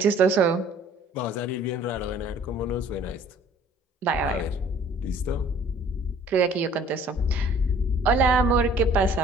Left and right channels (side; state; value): both; normal; correlation 0.54